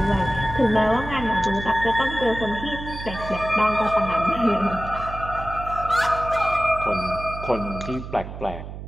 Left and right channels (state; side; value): noise; right; hum, 10 dB below the sound